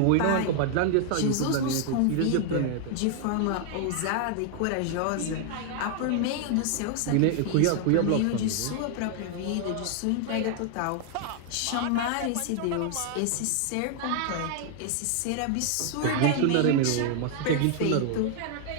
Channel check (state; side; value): different; both; correlation 0.00